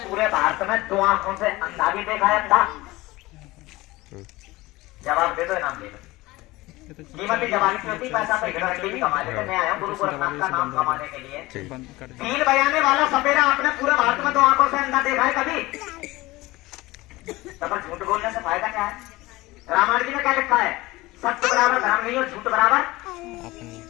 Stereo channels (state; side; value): quieter; right; 20.0 dB